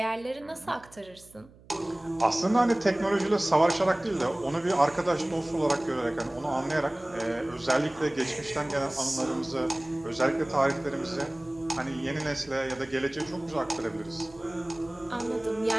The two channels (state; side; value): noise; right; hum, 25 dB below the sound